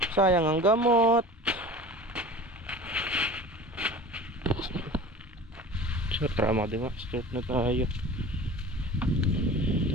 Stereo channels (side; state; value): both; normal; correlation 0.38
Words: Sayang ang gamot. So tara mga diba, start na tayo.